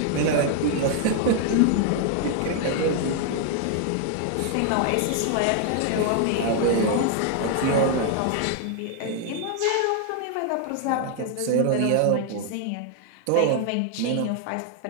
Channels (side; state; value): both; different; correlation 0.00